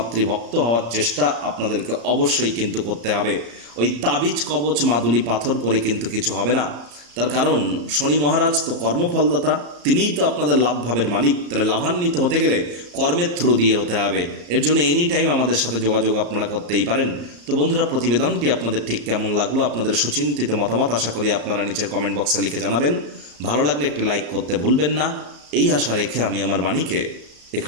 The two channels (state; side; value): late; left; 34 ms